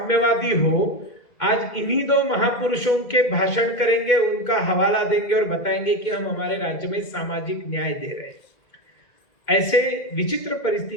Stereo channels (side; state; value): right; late; 2.1 ms